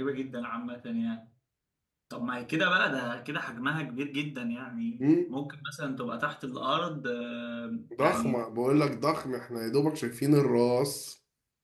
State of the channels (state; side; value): identical; both; correlation 1.00